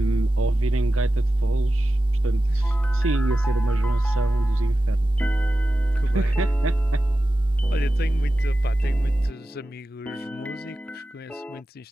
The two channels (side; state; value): both; normal; correlation 0.93